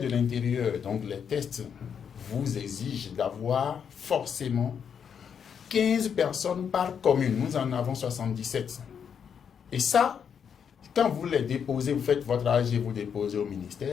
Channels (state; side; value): quieter; right; 7.4 dB